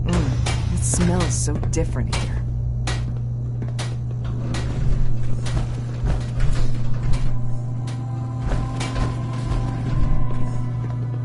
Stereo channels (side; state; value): both; identical; correlation 1.00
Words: It smells so different here.